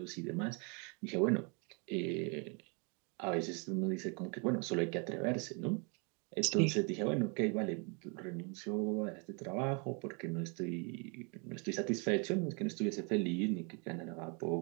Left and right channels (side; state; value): left; quieter; 34.2 dB